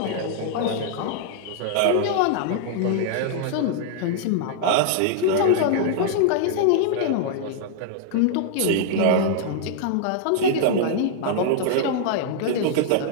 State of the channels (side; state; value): both; different; correlation -0.01